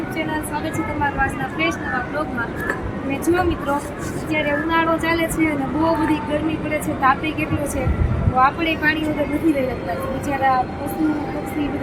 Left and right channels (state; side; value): identical; both; correlation 1.00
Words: channel. સ્વાગત છે તમારું આજના ફ્રેશ નવા બ્લોગમાં. અને જુઓ મિત્રો, અત્યારે ઉનાળો ચાલે છે અને બહુ બધી ગરમી પડે છે, તાપે કેટલો છે, તો આપણે પાણી વગર નથી રહી શકતા. બિચારા પશુ પક્ષી